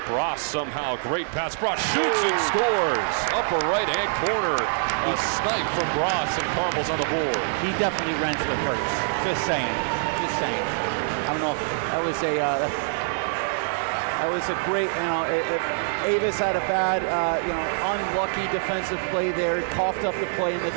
somehow. Great pass. Bross shoots and scores. Upper right-hand corner. A snipe from Bross, and Carmel's on the board. He definitely rents with Hurts. Just saying. Just saying. I don't know if that was a great, Avis had a bad, unlucky defensive play there, coughed up the play in the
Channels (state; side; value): silent; left; digital silence